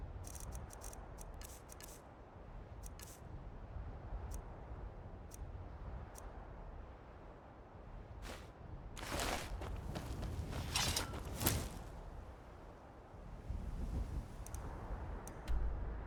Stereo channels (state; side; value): identical; both; correlation 1.00